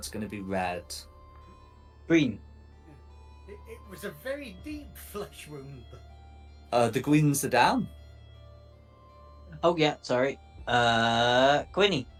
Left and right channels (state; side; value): identical; both; correlation 1.00